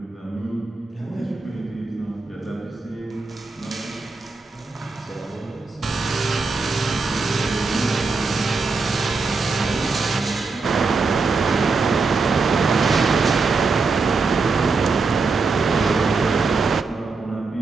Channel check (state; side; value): quieter; left; 4.2 dB